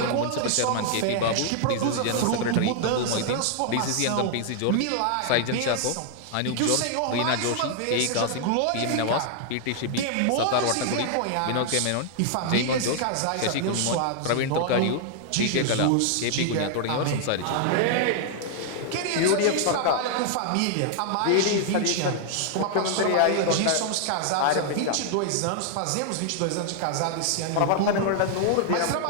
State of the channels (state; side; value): different; both; correlation 0.00